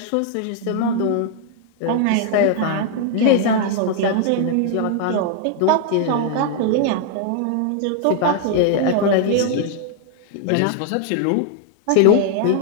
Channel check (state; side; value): different; both; correlation 0.00